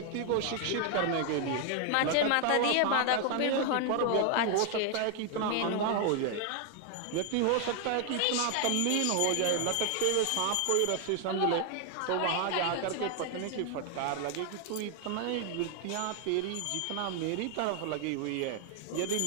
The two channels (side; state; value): both; different; correlation 0.00